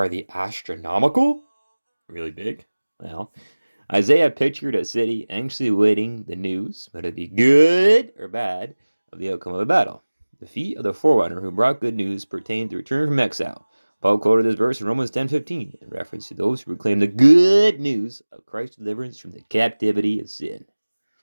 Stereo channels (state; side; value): inverted; both; correlation -1.00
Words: they astronomical? Really big? Well, Isaiah pictured a city anxiously awaiting the news, whether it be good or bad, of the outcome of a battle. The feet of the forerunner who brought good news pertained to return from exile. Paul quoted this verse in Romans 10:15 in reference to those who proclaim the good news of Christ's deliverance from the captivity of sin.